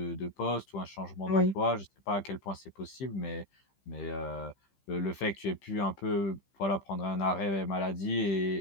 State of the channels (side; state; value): right; late; 15 ms